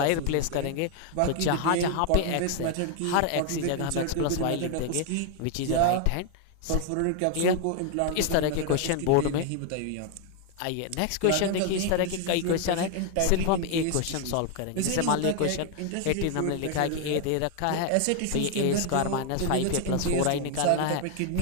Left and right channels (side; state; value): both; different; correlation 0.00